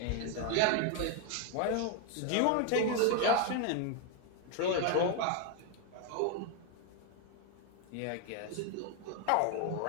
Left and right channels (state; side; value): different; both; correlation 0.01